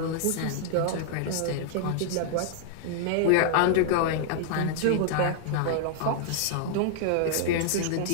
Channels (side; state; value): both; different; correlation -0.01